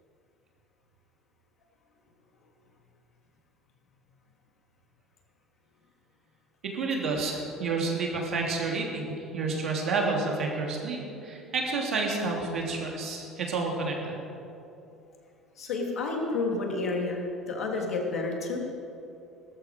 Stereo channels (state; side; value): normal; both; correlation 0.37